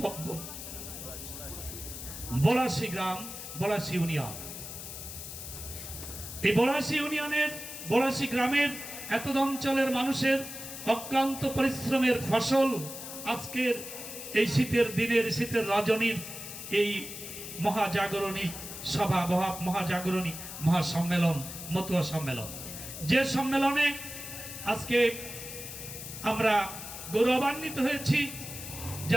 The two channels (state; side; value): noise; left; hiss, 10 dB below the sound